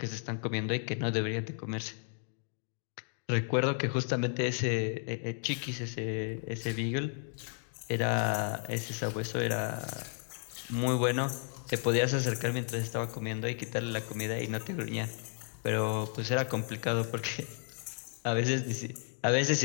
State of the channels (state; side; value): silent; right; 56 dB below the other